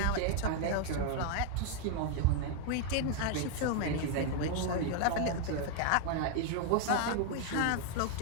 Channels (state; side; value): different; both; correlation 0.00